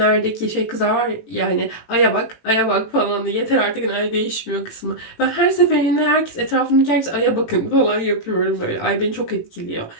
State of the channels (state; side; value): late; right; 18 ms